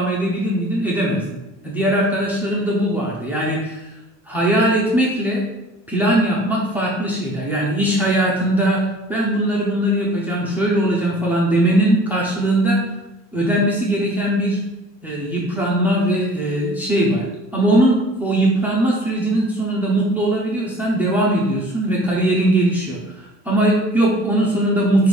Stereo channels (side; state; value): both; normal; correlation 0.49